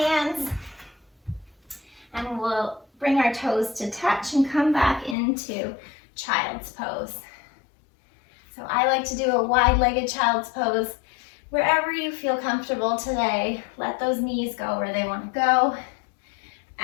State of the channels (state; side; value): drops out; right; at 5.2 s